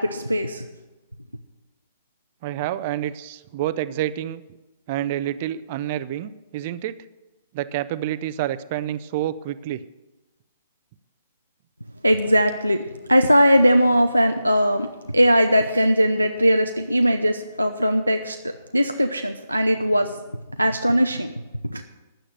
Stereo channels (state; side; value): inverted; both; correlation -0.87